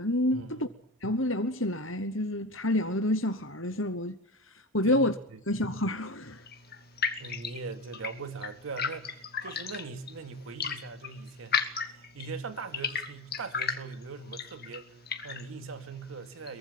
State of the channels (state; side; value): normal; both; correlation 0.25